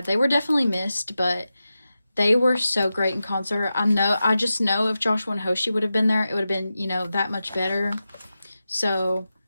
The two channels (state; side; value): inverted; both; correlation -0.92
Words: they were definitely missed, but they were so great in concert. I just know if Joshua and Hoshi would have been there, it would have been, you know, that much better. So